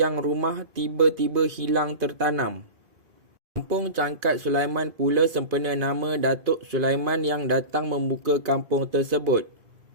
rumah tiba-tiba hilang tertanam. Kampung Cangkat Sulaiman pula sempena nama Datuk Sulaiman yang datang membuka kampung tersebut.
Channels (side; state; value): left; late; 2.5 ms